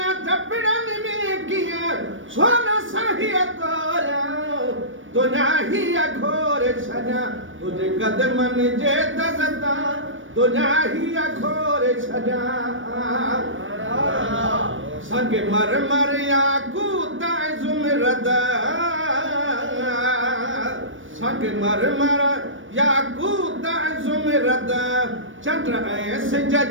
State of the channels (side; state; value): left; late; 0.57 ms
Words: चपड़न में किया सोना सही तोरा दुनिया ही अघोर सजा। तुझे कदमन जे दज़ता दुनिया ही अघोर सजा। संग मर मर याकूत ज़ुमरद संग मर मर याकूत ज़ुमरद चंद्र ऐं सिज